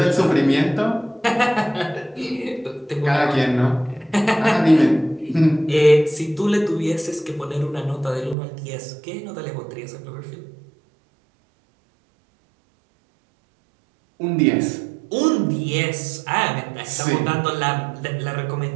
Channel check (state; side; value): drops out; left; at 8.3 s